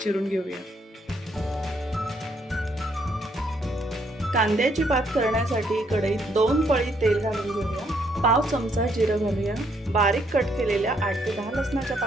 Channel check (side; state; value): both; normal; correlation 0.71